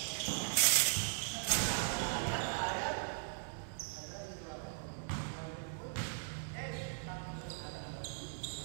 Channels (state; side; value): silent; left; 52 dB below the other